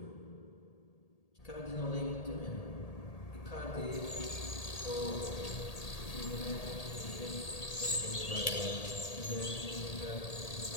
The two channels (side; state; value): right; late; 1.8 ms